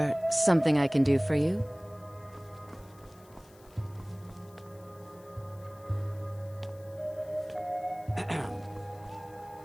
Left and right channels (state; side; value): noise; left; hiss, 27 dB below the sound